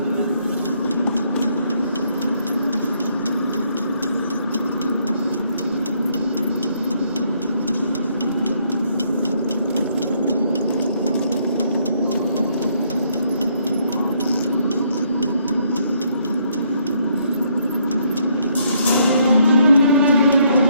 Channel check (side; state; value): both; inverted; correlation -0.70